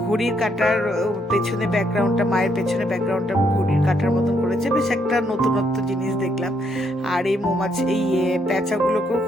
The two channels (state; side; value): normal; both; correlation 0.74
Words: ঘড়ির কাটার পেছনে ব্যাকগ্রাউন্ডটা, মায়ের পেছনে ব্যাকগ্রাউন্ডটা ঘড়ির কাটার মতন করেছে, বেশ একটা নতুনত্ব জিনিস দেখলাম। আর এই মৌমাছি, এই প্যাঁচাগুলোকেও